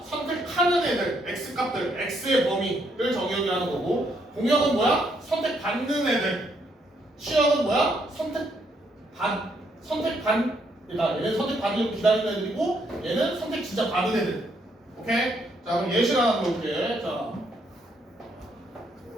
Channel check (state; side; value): normal; both; correlation 0.73